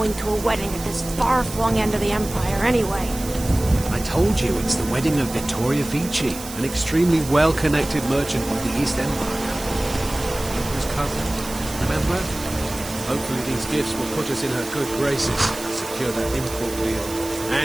to a wedding at this far-flung end of the Empire, anyway? I told you, it's the wedding of Vittoria Vici, an extremely well-connected merchant of the East Empire. Emperor's cousin, remember? Hopefully these gifts will put us in her good graces, secure that import deal,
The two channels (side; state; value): right; noise; hiss, 12 dB below the sound